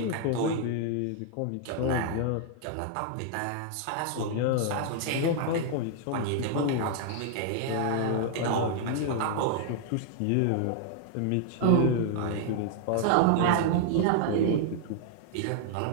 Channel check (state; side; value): different; both; correlation 0.00